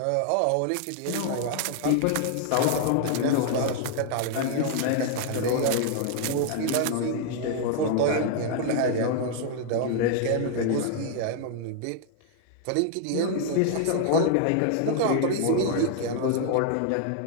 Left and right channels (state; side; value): different; both; correlation 0.00